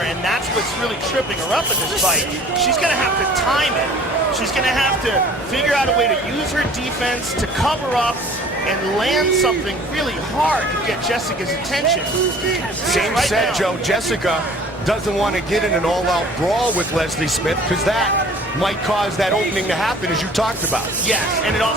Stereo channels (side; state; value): both; normal; correlation 0.49